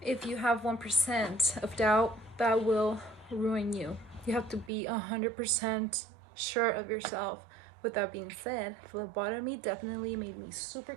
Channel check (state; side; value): drops out; left; at 4.7 s